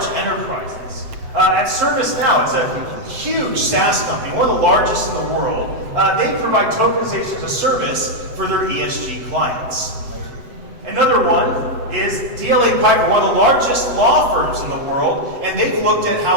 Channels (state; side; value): late; left; 7.9 ms